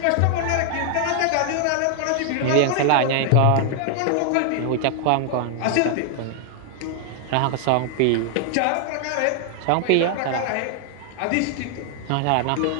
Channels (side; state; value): both; different; correlation 0.00